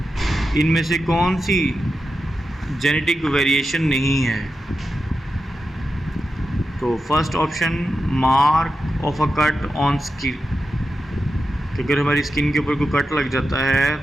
इनमें से कौन सी जेनेटिक वेरिएशन नहीं है। तो first option mark of a cut on skin, कि अगर हमारी स्किन के ऊपर कोई कट लग जाता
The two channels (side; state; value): both; normal; correlation 0.90